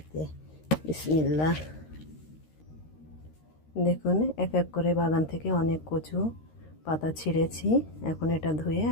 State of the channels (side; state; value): right; late; 13 ms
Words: দিয়ে। বিসমিল্লাহ। দেখুন, এক এক করে বাগান থেকে অনেক কচু পাতা ছিঁড়েছি। এখন এটা ধুয়ে